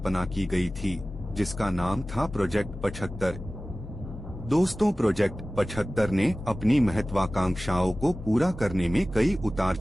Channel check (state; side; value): normal; both; correlation 0.96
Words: की गई थी, जिसका नाम था प्रोजेक्ट 75। दोस्तों, प्रोजेक्ट 75 ने अपनी महत्वाकांक्षाओं को पूरा करने में कई उतार